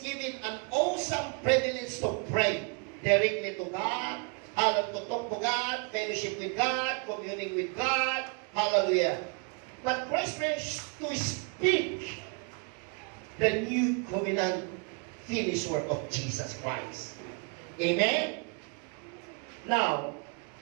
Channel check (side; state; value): left; quieter; 36.6 dB